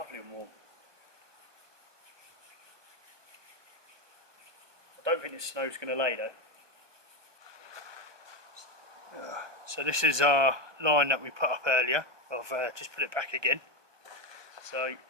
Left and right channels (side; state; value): left; late; 1.2 ms